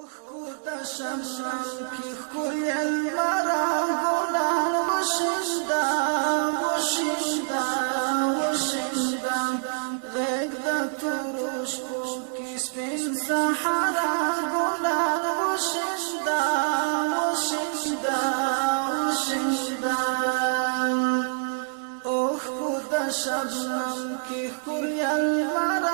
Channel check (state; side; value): silent; left; digital silence